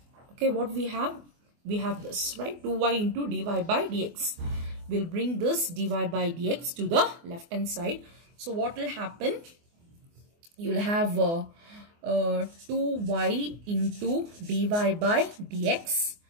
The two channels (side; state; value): left; late; 24 ms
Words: okay, what we have this, right? 2y into dy by dx. We'll bring this dy by dx to the left hand side. So what will happen? You'll have 2y into dy by dx,